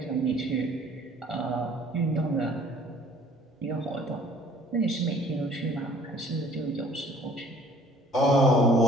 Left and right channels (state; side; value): normal; both; correlation 0.55